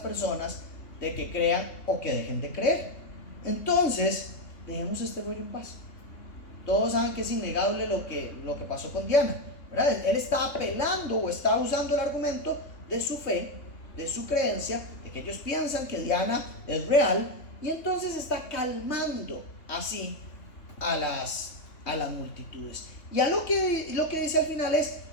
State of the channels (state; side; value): late; right; 3.2 ms